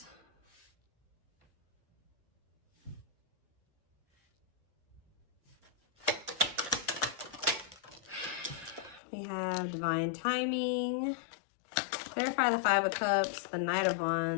We have Divine Timing. Clarify the Five of Cups, the Knight of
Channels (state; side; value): drops out; right; at 9.0 s